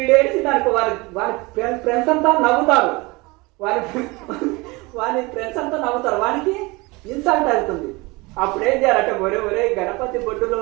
దానికి వారి ఫ్రెండ్స్ అంతా నవ్వుతారు, వారి ఫ్రెండ్స్ అంతా నవ్వుతారు, వానికి ఇన్సల్ట్ అవుతుంది. అప్పుడు ఏం చేయాలంటే, ఒరే గణపతి బొడ్డులో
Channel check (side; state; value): left; quieter; 24.5 dB